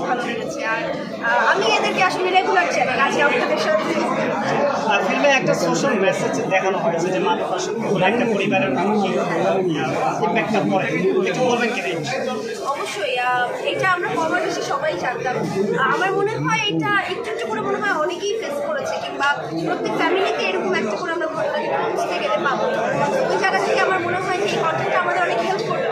ভালো লেগেছে। আর আমি এদেরকে আসলে রেগুলার চ্যানেল আছে আপনাদের সাথে। ফিল্মে একটা সোশ্যাল মেসেজ দেখানো হয়েছে যে মাদক একটা পরিবারের ইম্প্যাক্টটা পড়ে, একটু বলবেন কি? অবশ্যই এটা আমরা কম বেশি সবাই জানতাম। আমার মনে হয় এটা একটু একটু করে মনে হয় অনেকেই ফেস করেছে, কিংবা প্রত্যেক ফ্যামিলিতে এরকম একটা করে আমরা ঘটনা বুঝতে গেলে পাবো। ওই জায়গা থেকে আমার মনে হয় এই কন্টেন্টটা আমাদের অনেক হেল্প করবে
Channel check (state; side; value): identical; both; correlation 1.00